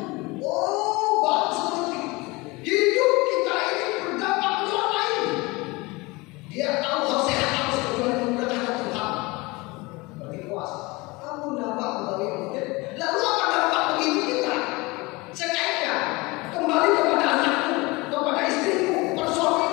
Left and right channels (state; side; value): quieter; right; 23.9 dB